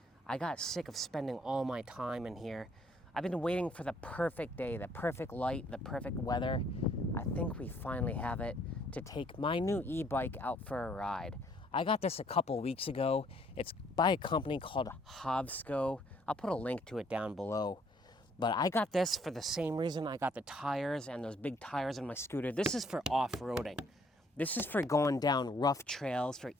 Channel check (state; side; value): normal; both; correlation 0.64